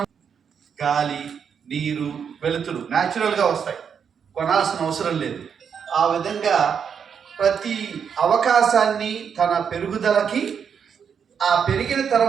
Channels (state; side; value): quieter; left; 7.1 dB